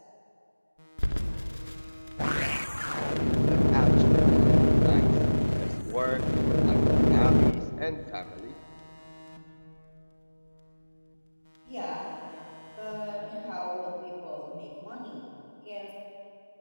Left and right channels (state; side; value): inverted; both; correlation -1.00